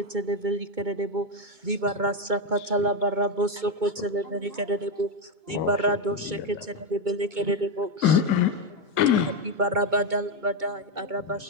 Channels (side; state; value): left; late; 2.2 ms